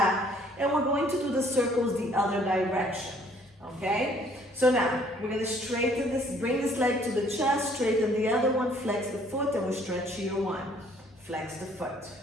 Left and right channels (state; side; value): normal; both; correlation 0.60